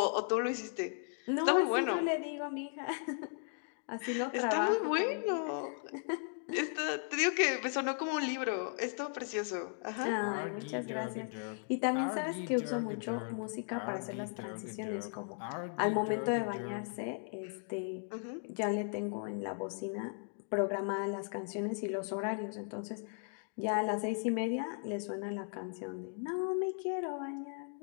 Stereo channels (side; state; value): right; silent; 53 dB below the other